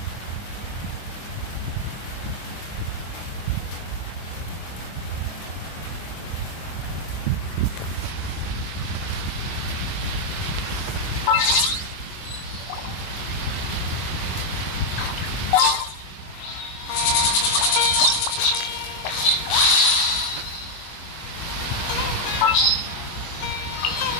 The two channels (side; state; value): right; late; 25 ms